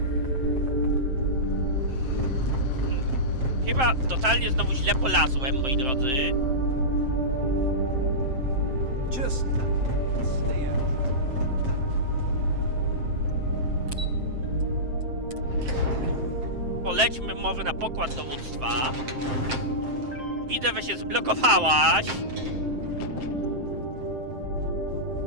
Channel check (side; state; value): left; late; 7.7 ms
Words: Chyba totalnie znowu źle polazłem, moi drodzy. Just stay out. Polećmy może na pokład dowództwa. Widzę, że się zblokowałaś.